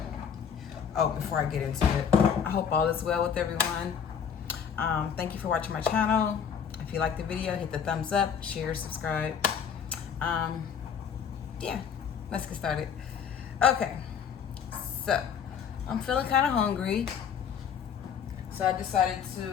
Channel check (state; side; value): quieter; right; 7.5 dB